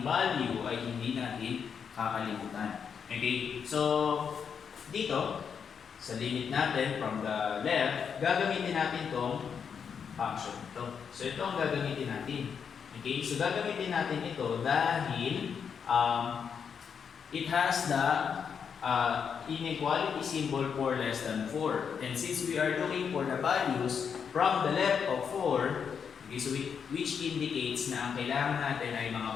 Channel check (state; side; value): quieter; right; 6.9 dB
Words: value ay hindi natin kakalimutan. Okay, so dito, sa limit natin from the left, gagamitin natin itong function ito. So ito ang gagamitin natin. Okay, so gagamitin natin ito dahil it has the inequality symbol for less than 4. And since we are looking for the values from the left of 4, okay, so which indicates na ang kailangan natin ay mga